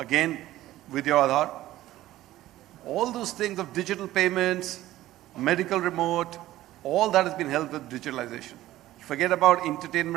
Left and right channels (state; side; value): quieter; left; 15.1 dB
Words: with your Aadhaar. All those things of digital payments, medical remote, all that has been helped with digitalization. Forget about